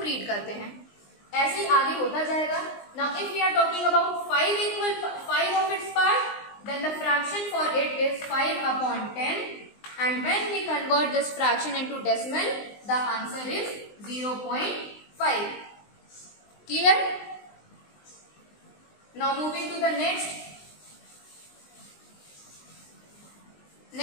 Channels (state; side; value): late; right; 19 ms